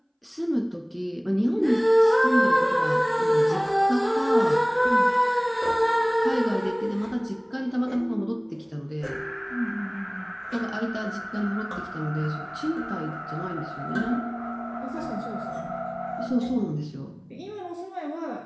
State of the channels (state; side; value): identical; both; correlation 1.00